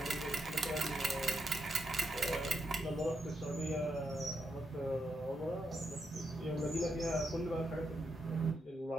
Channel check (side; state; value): both; normal; correlation 0.82